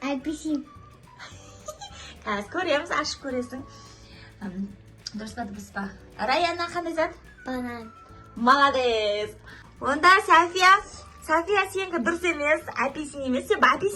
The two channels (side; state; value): both; identical; correlation 1.00